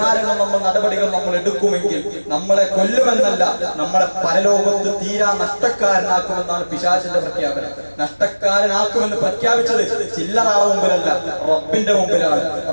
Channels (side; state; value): both; inverted; correlation -1.00